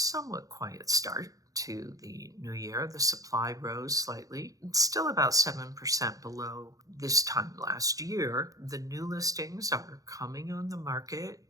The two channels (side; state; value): left; late; 0.17 ms